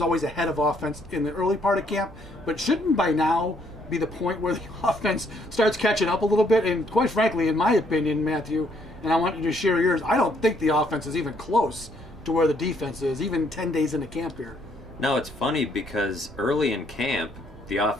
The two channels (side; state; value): both; normal; correlation 0.68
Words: always ahead of offense in the early part of camp, but shouldn't by now be the point where the offense starts catching up a little bit? And quite frankly, in my opinion, Matthew, and I want you to share yours, I don't think the offense is even close to where the defense is, even 10 days into camp here. No, it's funny because early in camp, the